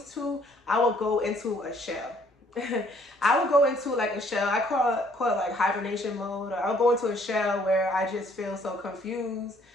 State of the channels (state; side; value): normal; both; correlation 0.62